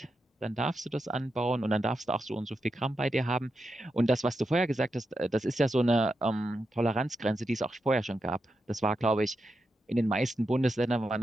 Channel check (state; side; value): normal; both; correlation 0.87